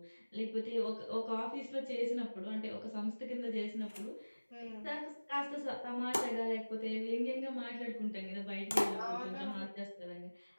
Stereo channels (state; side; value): inverted; both; correlation -1.00